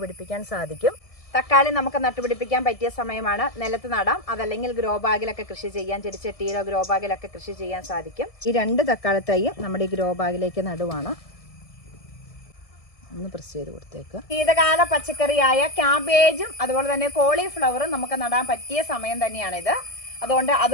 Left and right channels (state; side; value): late; right; 1.6 ms